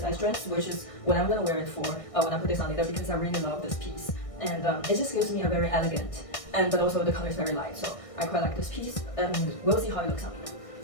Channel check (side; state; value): right; late; 1.6 ms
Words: dress, which is what I'm gonna wear it for when I put this on later, because I really love this piece. And it just gives me a very elegant, but also the color is very light, so I quite like this piece, and we'll see how it looks on me.